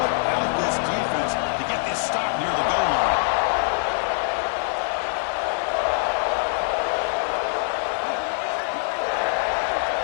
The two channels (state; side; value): silent; right; digital silence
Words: out this defense to get this stop near the goal line.